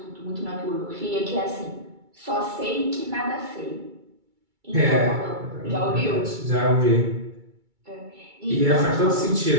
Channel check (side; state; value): left; late; 2.3 ms